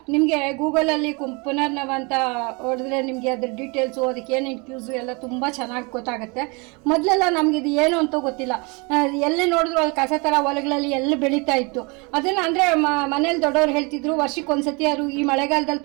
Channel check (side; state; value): left; quieter; 29.7 dB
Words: ನಿಮಗೆ ಗೂಗಲಲ್ಲಿ ಪುನರ್ನವ ಅಂತ ಹೊಡೆದ್ರೆ ನಿಮಗೆ ಅದ್ರ ಡೀಟೇಲ್ಸು ಅದಕ್ಕೆ ಏನೇನು ಕ್ಯೂಸು ಎಲ್ಲ ತುಂಬ ಚೆನ್ನಾಗಿ ಗೊತ್ತಾಗುತ್ತೆ. ಮೊದಲೆಲ್ಲ ನಮಗಿದು ಏನು ಅಂತ ಗೊತ್ತಿಲ್ಲ. ಎಲ್ಲಿ ನೋಡಿದ್ರು ಅಲ್ಲಿ ಕಸ ಥರ ಹೊಲಗಳಲ್ಲಿ ಎಲ್ಲಿ ಬೆಳೀತಾ ಇತ್ತು. ಅದನ್ನು ಅಂದರೆ ಮನೇಲಿ ದೊಡ್ಡವ್ರು ಹೇಳ್ತಿದ್ರು, ವರ್ಷಕ್ಕೊಂದ್ಸತಿ ಯಾರು ಈ